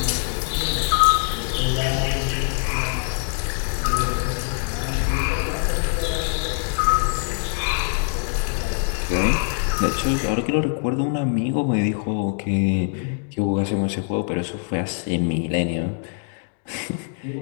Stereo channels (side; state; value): right; silent; 63 dB below the other